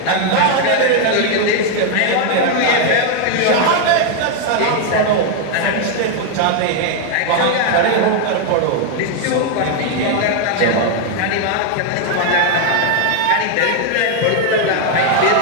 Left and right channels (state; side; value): different; both; correlation 0.00